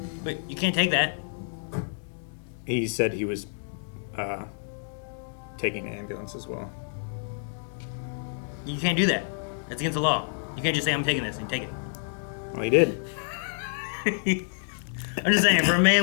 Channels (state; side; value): silent; right; digital silence